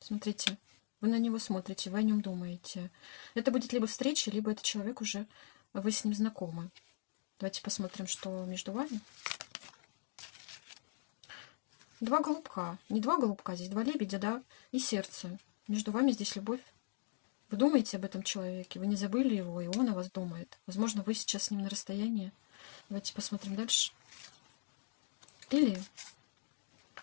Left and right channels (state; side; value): silent; right; digital silence